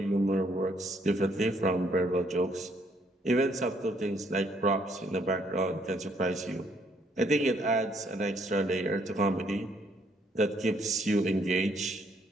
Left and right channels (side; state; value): both; normal; correlation 0.68